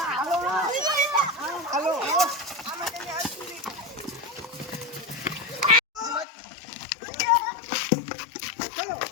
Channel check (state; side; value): drops out; right; at 6.2 s